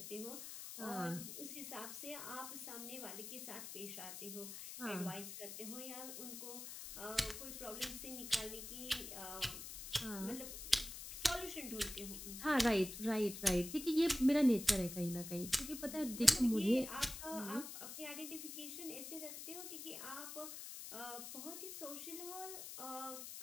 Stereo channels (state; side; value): noise; left; hiss, 8 dB below the sound